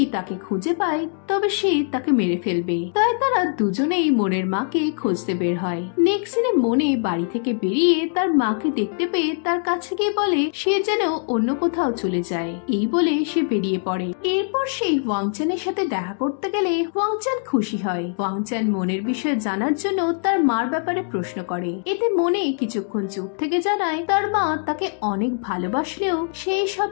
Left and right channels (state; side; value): silent; right; 57 dB below the other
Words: তাকে খুঁজে পায় তবে সে তাকে মেরে ফেলবে। তাই তারা দুজনেই মনের মাকে খুঁজতে বের হয়। নেক্সট সিনে মনে বাড়ি থেকে বেরিয়ে তার মাকে দেখতে পেয়ে তার কাছে গিয়ে বলে সে যেন অন্য কোথাও চলে যায়। এই বলে সে বেরিয়ে পড়ে। এরপর সে ওয়াংচানের সাথে দেখা করতে গেলে ওয়াংচান খুশি হয়। ওয়াংচান মনের বিষয়ে জানার জন্য তার মার ব্যাপারে প্রশ্ন করে। এতে মনে কিছুক্ষণ চুপ থেকে জানায় তার মা তাকে অনেক ভালোবাসলেও সেই সব